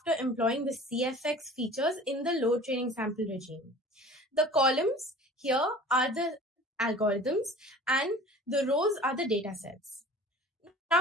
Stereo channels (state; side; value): normal; both; correlation 0.43